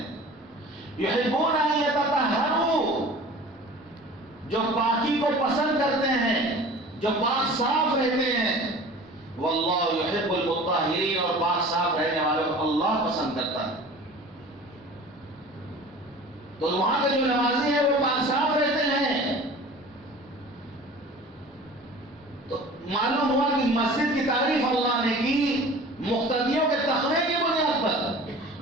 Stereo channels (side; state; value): both; normal; correlation 0.42